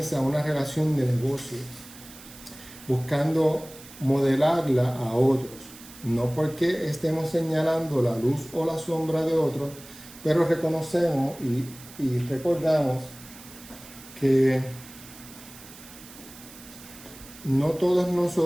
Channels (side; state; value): right; noise; hiss, 18 dB below the sound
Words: una relación de negocio, buscando modelarla a otros, no porque estemos señalando la luz o la sombra de otros, pero reconocemos y recordamos que no todos